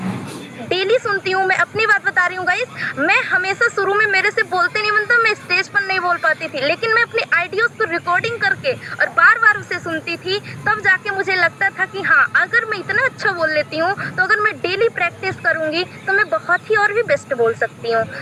डेली सुनती हूँ, मैं अपनी बात बता रही हूँ गाइस, मैं हमेशा शुरू में मेरे से बोलते नहीं बनता, मैं स्टेज पर नहीं बोल पाती थी, लेकिन मैं अपने आइडियोज को रिकॉर्डिंग करके और बार बार उसे सुनती थी, तब जाके मुझे लगता था कि हाँ, अगर मैं इतना अच्छा बोल लेती हूँ तो अगर मैं डेली प्रैक्टिस करूँगी तो मैं बहुत ही और भी बेस्ट बोल सकती हूँ।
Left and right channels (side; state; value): both; identical; correlation 1.00